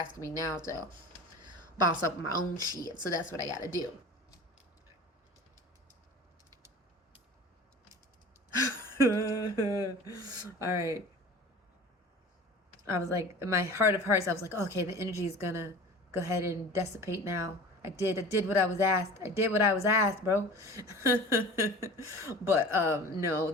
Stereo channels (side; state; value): both; normal; correlation 0.39